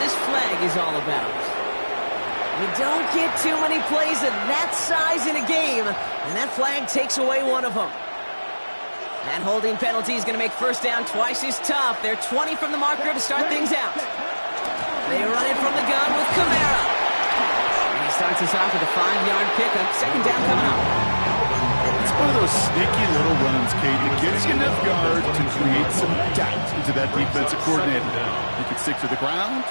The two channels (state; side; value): inverted; both; correlation -1.00